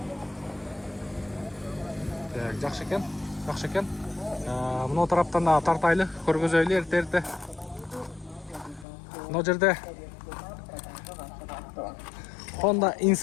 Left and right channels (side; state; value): right; drops out; at 8.8 s